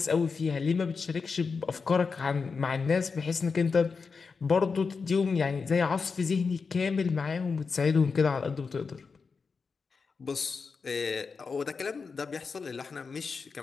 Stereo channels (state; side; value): quieter; right; 5.0 dB